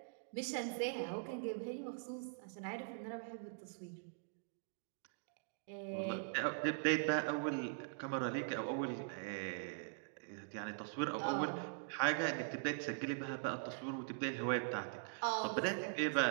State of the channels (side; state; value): left; silent; digital silence